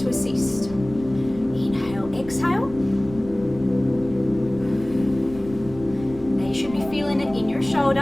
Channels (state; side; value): noise; right; rumble, 16 dB below the sound